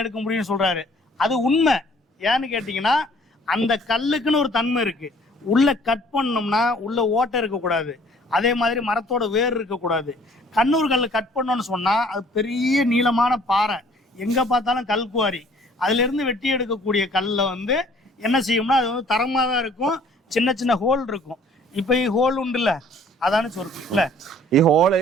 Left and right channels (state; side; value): normal; both; correlation 0.56